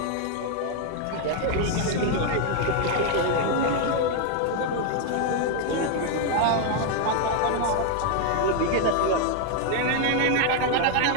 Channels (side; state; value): both; different; correlation 0.01